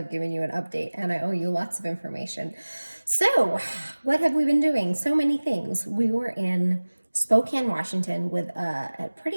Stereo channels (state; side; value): inverted; both; correlation -1.00